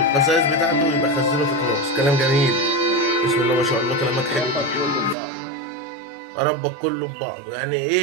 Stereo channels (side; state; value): left; drops out; at 5.2 s